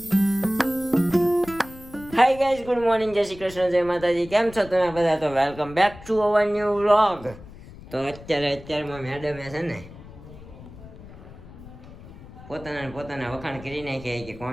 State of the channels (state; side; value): noise; left; rumble, 17 dB below the sound